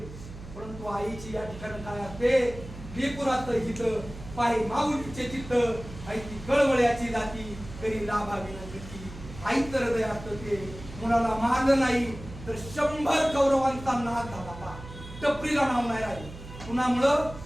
परंतु आईची या ठिकाणी काय असते? लेकुराचं हित, पाय माऊलीचे चित्त, आई ती कळवळ्याची जाती, तरी लाभावी नव्हती. आईचं हृदय असतं ते. मुलाला मारलं नाही तर 100 कौरवांचा नाश झाला. टपरीला नाव नाही राहिलं. कुणामुळं?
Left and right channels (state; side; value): noise; right; hum, 14 dB below the sound